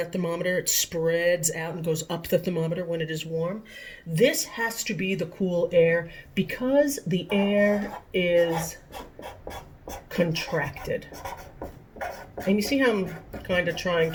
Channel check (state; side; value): identical; both; correlation 1.00